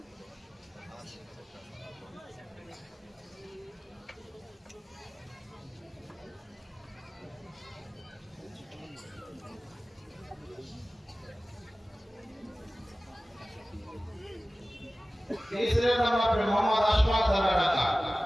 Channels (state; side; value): normal; both; correlation 0.97